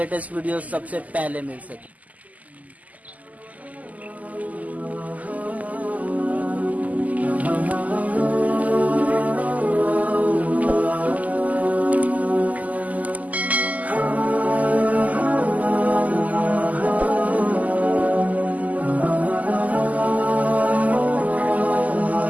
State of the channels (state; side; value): late; left; 0.076 ms